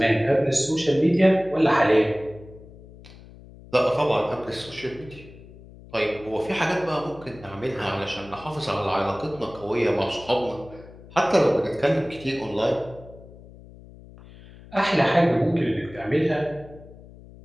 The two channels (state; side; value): noise; left; hum, 20 dB below the sound